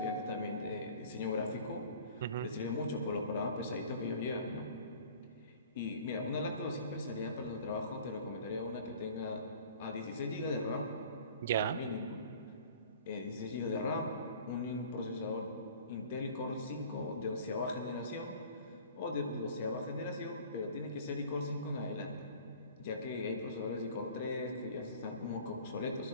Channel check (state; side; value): inverted; both; correlation -0.47